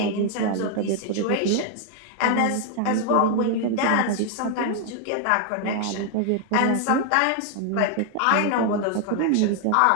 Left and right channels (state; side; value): different; both; correlation 0.00